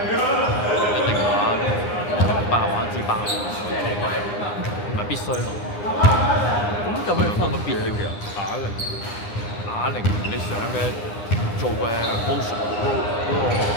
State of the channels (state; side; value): late; right; 9.8 ms